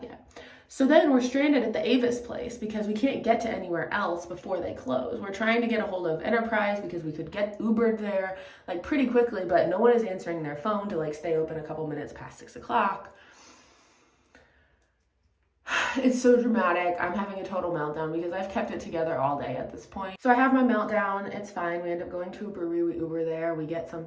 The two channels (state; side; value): identical; both; correlation 1.00